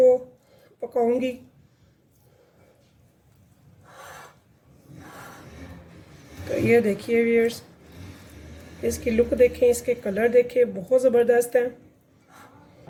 पकाऊंगी। तो ये देखिए व्यूअर्स, इसकी लुक देखें, इसके कलर देखें, बहुत ज़बरदस्त है।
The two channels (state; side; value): identical; both; correlation 1.00